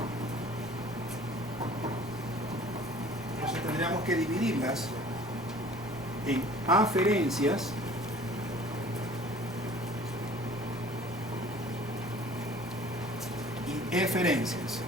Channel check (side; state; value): both; normal; correlation 0.49